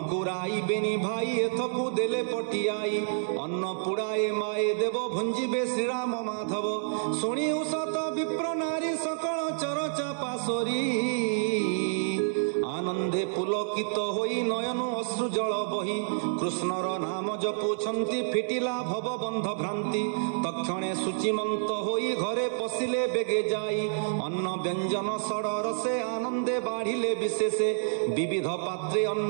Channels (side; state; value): left; silent; 59 dB below the other